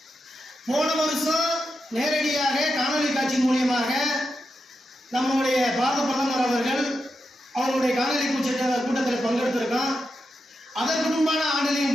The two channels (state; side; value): normal; both; correlation 0.87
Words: போன வருஷம் நேரடியாக காணொலி காட்சி மூலியமாக நம்முடைய பாரத பிரதமர் அவர்கள் அவருடைய காணொலி கூட்டத்தில் பங்கெடுத்திருக்கோம். அதற்கு முன்பான